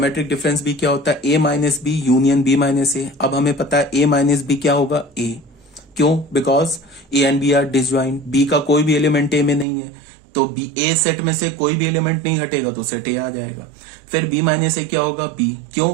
डिफरेंस बी क्या होता है, A minus B union B minus A. अब हमें पता है ए माइनस बी क्या होगा, ए। क्यों, because A and B are disjoint, B का कोई भी एलिमेंट ए में नहीं है, तो बी ए सेट में से कोई भी एलिमेंट नहीं हटेगा तो सेट ए आ जाएगा। फिर बी माइनस ए क्या होगा, बी। क्यों,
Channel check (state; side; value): drops out; left; at 9.7 s